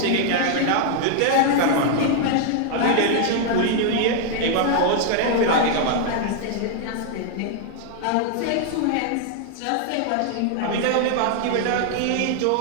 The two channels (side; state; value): both; different; correlation 0.00